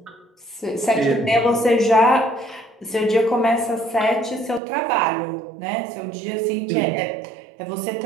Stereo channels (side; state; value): left; drops out; at 4.6 s